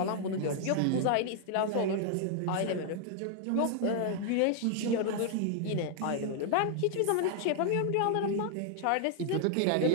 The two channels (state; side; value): different; both; correlation 0.00